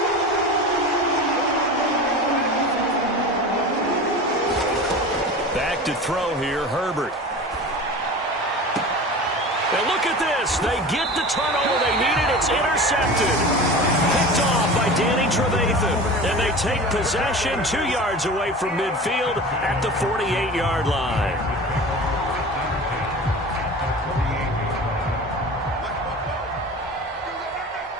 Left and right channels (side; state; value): both; normal; correlation 0.34